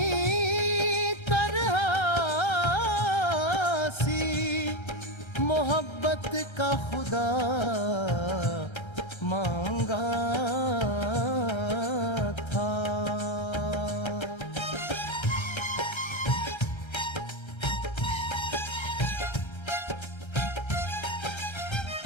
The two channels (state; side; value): late; right; 1.3 ms